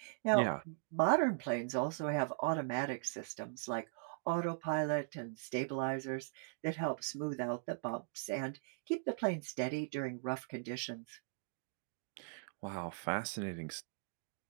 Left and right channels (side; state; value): left; silent; digital silence